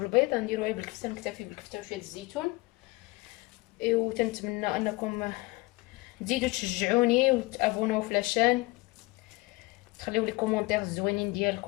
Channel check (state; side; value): quieter; right; 23.0 dB